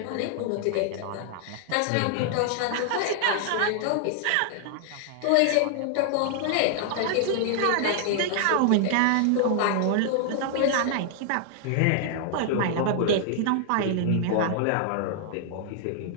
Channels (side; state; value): both; different; correlation 0.00